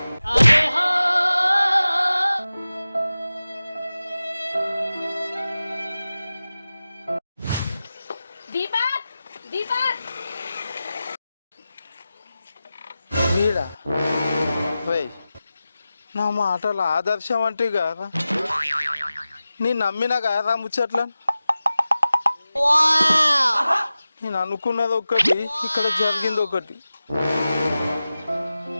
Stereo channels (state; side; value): inverted; both; correlation -0.95